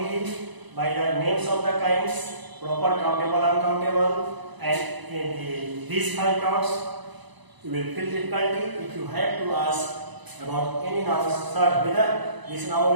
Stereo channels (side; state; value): left; late; 1.0 ms